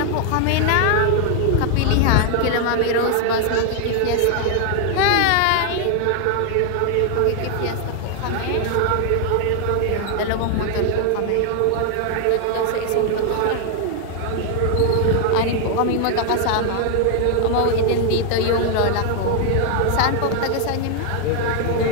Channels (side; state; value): both; different; correlation 0.00